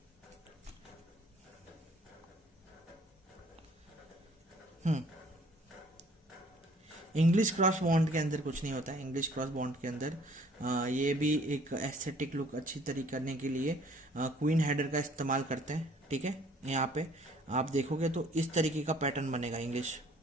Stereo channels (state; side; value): normal; both; correlation 0.57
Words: इंग्लिश क्रॉस बॉन्ड के अंदर कुछ नहीं होता है। इंग्लिश क्रॉस बॉन्ड के अंदर ये भी एक एस्थेटिक लुक अच्छी तरीके करने के लिए क्वीन हेडर का इस्तेमाल करते हैं, ठीक है। यहाँ पे आप देखोगे तो इस तरीके का पैटर्न बनेगा इंग्लिश